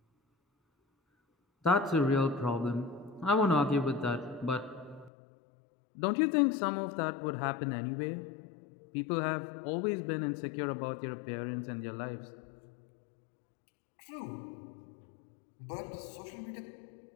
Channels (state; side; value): drops out; right; at 5.1 s